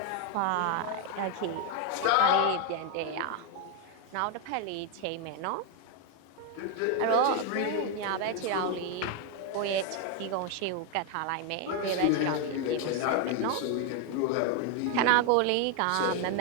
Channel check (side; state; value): both; different; correlation 0.01